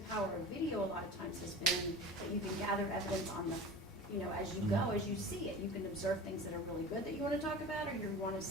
power of video a lot of times has been that you can gather evidence on the, as you go, as you see it. You can observe things that are really good that you wanna talk about, or you wanna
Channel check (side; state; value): both; normal; correlation 0.35